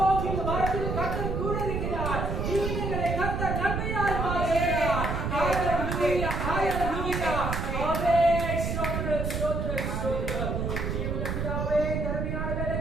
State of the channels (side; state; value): right; noise; rumble, 2 dB below the sound